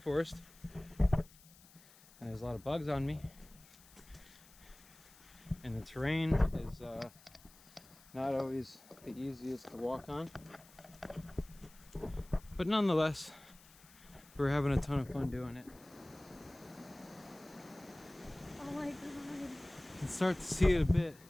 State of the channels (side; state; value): left; noise; hiss, 24 dB below the sound